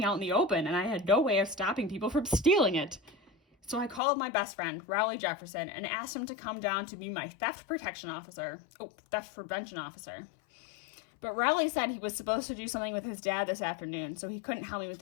out in the open, and I had no way of stopping people from stealing it. So I called my best friend, Rowley Jefferson, and asked him to come down to be my theft prevention officer. But Rowley said he was supposed to do something with his dad this afternoon, so he couldn't help me with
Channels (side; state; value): right; drops out; at 4.0 s